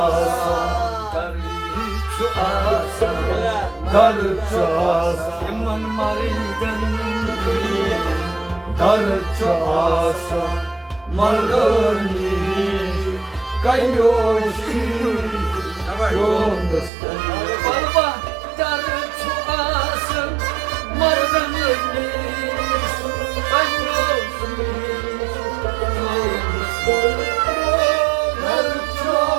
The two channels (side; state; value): left; drops out; at 16.9 s